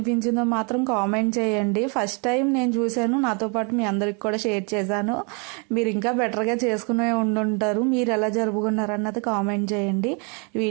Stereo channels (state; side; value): quieter; left; 35.2 dB